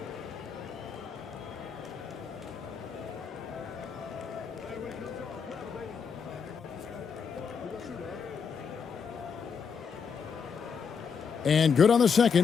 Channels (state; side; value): quieter; right; 6.3 dB